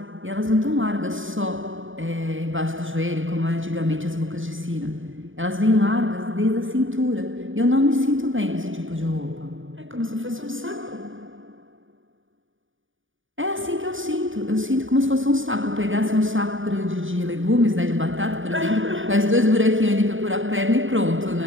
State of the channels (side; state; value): left; late; 0.57 ms